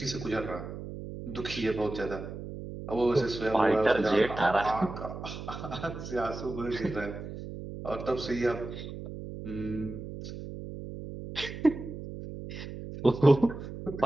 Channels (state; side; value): noise; right; hum, 9 dB below the sound